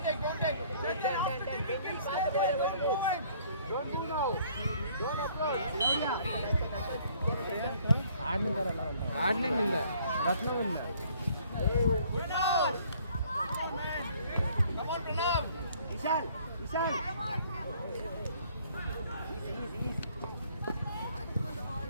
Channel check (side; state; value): both; inverted; correlation -0.60